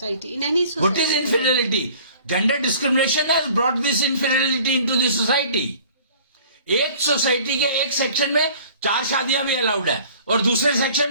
in any society. What is infidelity? Gender discrimination has brought this infidelity into the society. एक सोसाइटी के एक सेक्शन में 4 शादियां भी अलाउड है और दूसरे सेक्शन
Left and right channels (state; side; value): inverted; both; correlation -0.50